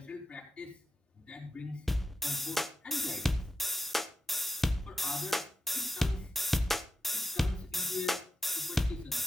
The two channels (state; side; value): normal; both; correlation 0.89